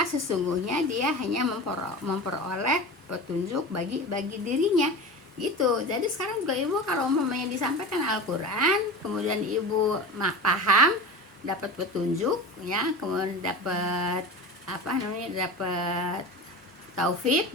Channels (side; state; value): both; normal; correlation 0.30